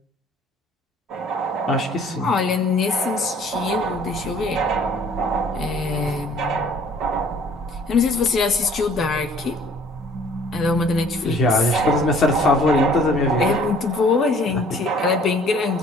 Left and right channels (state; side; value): normal; both; correlation 0.55